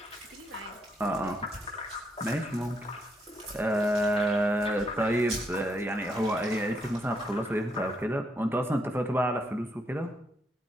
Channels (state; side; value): normal; both; correlation 0.76